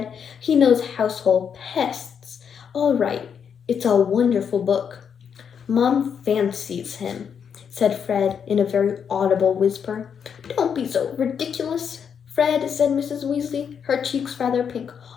He knows household pests. All right, it's a wonderful book. Mom fancies him, said Fred in a very audible whisper. Don't be so ridiculous, Fred, said Mrs. Weasley, her cheeks rather pink.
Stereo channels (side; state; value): right; quieter; 7.3 dB